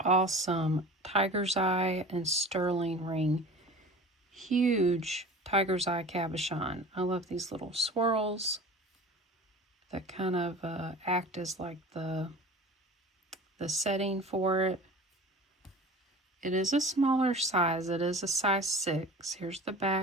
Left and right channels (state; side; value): normal; both; correlation 0.38